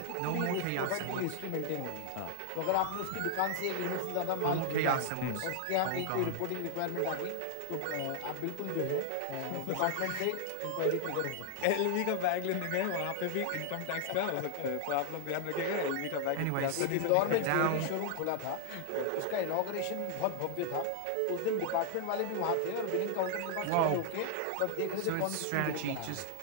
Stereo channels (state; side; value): different; both; correlation 0.00